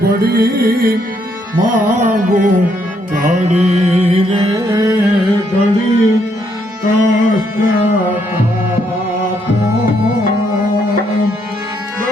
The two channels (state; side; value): normal; both; correlation 0.73